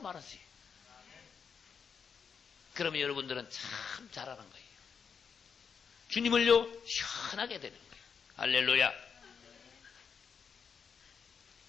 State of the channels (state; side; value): quieter; right; 6.4 dB